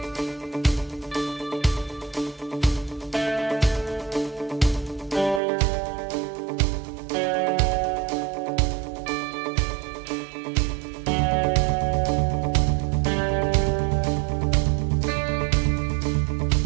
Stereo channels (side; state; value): left; drops out; at 5.4 s